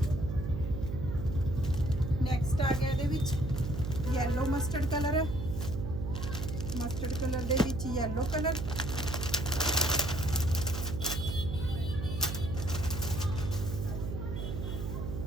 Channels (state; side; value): noise; right; hum, 4 dB below the sound